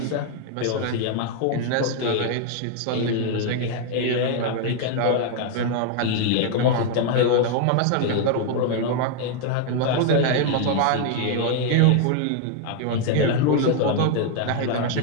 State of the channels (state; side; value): different; both; correlation 0.00